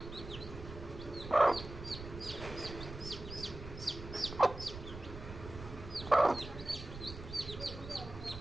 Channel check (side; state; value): right; noise; rumble, 11 dB below the sound